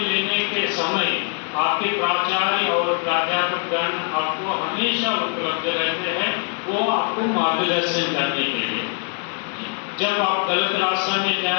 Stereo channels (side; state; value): right; quieter; 38.1 dB